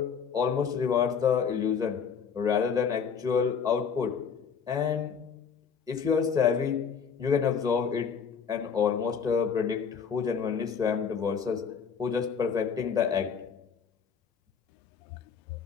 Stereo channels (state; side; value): quieter; right; 6.6 dB